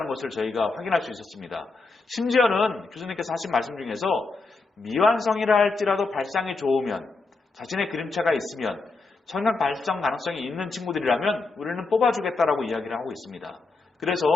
것을 저희가 확인할 수 있었습니다. 심지어는 교수님께서 하신 말씀 중에서 미완성이라 할지라도 발상이 좋으면 자신의 그림체가 있으면 청각 발전 가능성이 있는 친구들이라면 우리는 뽑아주겠다라고 이야기를 하고 있습니다. 그래서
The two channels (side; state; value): right; quieter; 3.8 dB